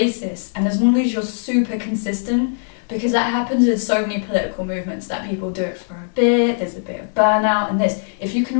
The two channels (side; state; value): right; silent; digital silence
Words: And as long as you're super consistent, because that happens with so many political movements, that people do it for a bit, there's a bit of burnout and this. If you